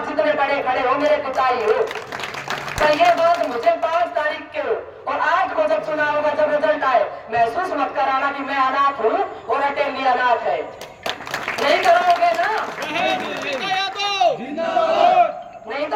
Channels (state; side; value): identical; both; correlation 1.00